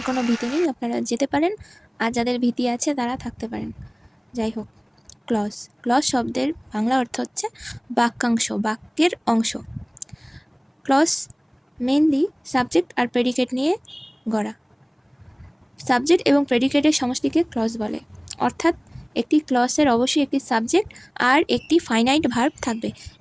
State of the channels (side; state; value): both; identical; correlation 1.00